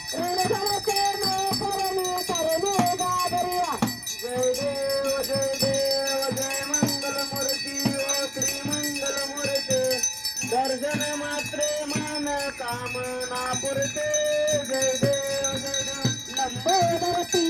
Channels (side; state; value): both; identical; correlation 1.00